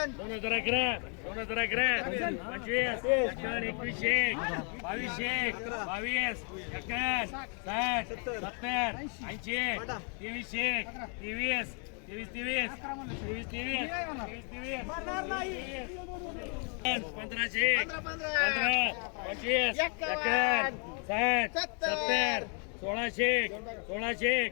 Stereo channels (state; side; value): quieter; right; 39.5 dB